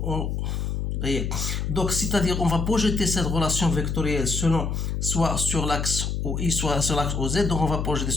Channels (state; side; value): noise; left; hum, 1 dB below the sound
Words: donc, c'est-à-dire, on va projeter cette relation vectorielle selon soit sur l'axe OI, soit sur l'axe OZ. Donc, on va projeter